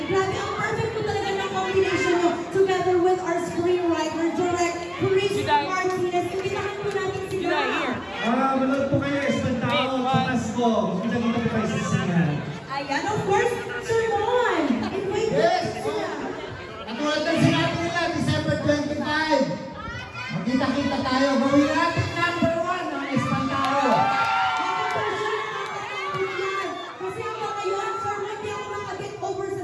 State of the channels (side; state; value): both; identical; correlation 1.00